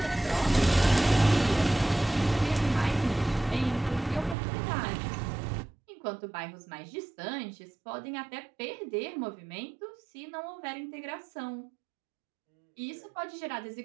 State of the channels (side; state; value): left; drops out; at 4.4 s